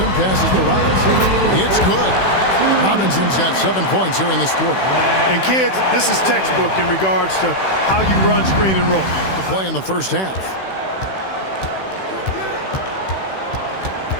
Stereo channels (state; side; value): late; right; 16 ms